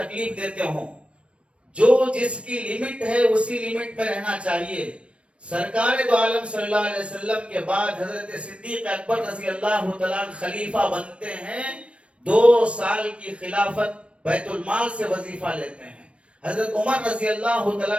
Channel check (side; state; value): left; late; 0.060 ms